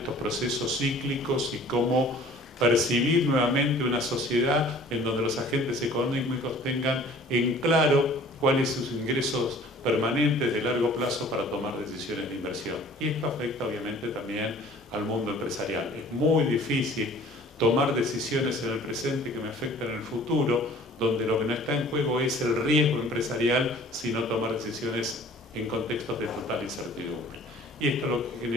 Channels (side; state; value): both; normal; correlation 0.49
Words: procesos cíclicos y cómo percibir nuevamente una sociedad en donde los agentes económicos tengan en claro cuáles son sus ingresos permanentes de largo plazo para tomar decisiones de inversión. Y esto afecta obviamente también al mundo empresarial. Es muy difícil tomar decisiones en el presente que me afectan en el futuro, donde lo que no está en juego es el riesgo empresarial, sino tomar decisiones en contextos de total incertidumbre. Y esto lo que